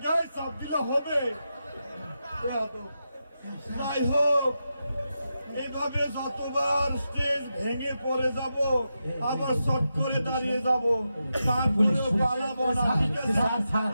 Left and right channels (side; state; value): both; inverted; correlation -0.88